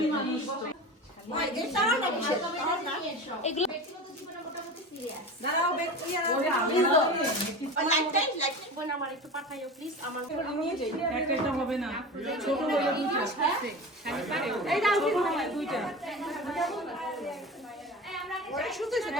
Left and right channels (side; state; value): both; normal; correlation 0.31